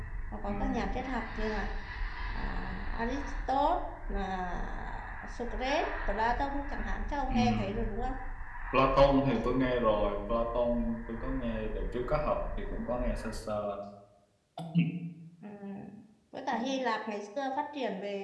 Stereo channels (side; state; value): both; identical; correlation 1.00